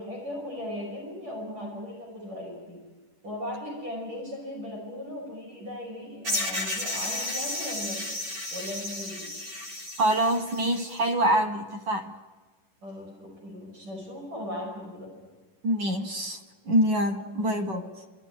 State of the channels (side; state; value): left; late; 10 ms